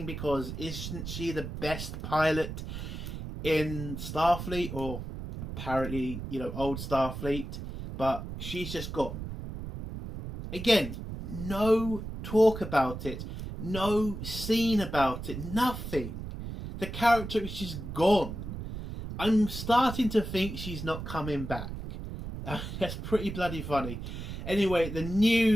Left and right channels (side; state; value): right; noise; rumble, 8 dB below the sound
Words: because isn't she the best pilot in Starfleet, or apparently, old Starfleet? But she's just gone. Again, no talk about it. No scene about it. Nothing. The character is just gone. I'm starting to think she's not coming back. That's pretty bloody funny. Anyway, the